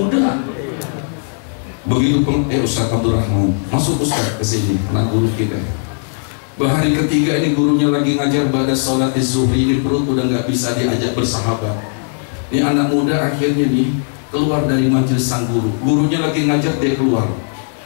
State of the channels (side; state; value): right; silent; digital silence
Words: Begitu Ustaz Abdurrahman masuk Ustaz ke sini, anak guru kita. Hari ketiga ini gurunya lagi ngajar pada sholat zuhri, ini perut udah nggak bisa diajak bersahabat. Ini anak muda akhirnya nih keluar dari majelis sang guru. Gurunya lagi ngajar, dia keluar,